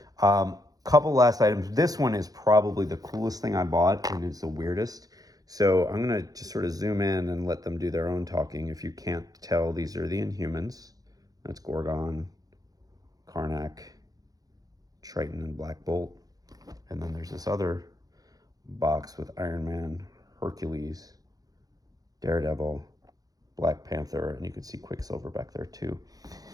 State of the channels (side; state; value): left; late; 0.18 ms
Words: Couple last items. This one is probably the coolest thing I bought, and it's the weirdest. So I'm going to just sort of zoom in and let them do their own talking. If you can't tell, these are the Inhumans. That's Gorgon, Karnak, Triton, and Black Bolt. And then there's this other box with Iron Man, Hercules, Daredevil, Black Panther, and you can see Quicksilver back there too.